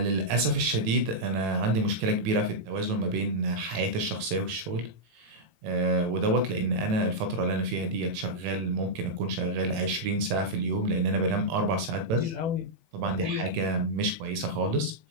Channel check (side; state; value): left; late; 18 ms